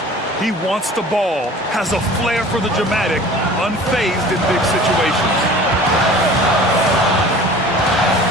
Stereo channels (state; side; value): normal; both; correlation 0.44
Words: He wants the ball, has a flair for the dramatic, unfazed in big situations.